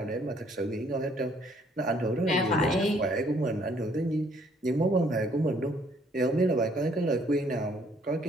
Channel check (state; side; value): normal; both; correlation 0.64